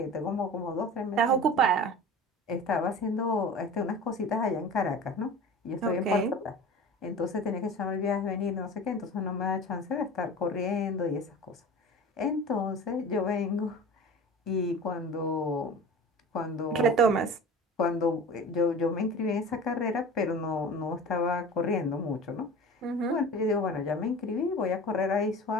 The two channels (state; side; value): normal; both; correlation 0.36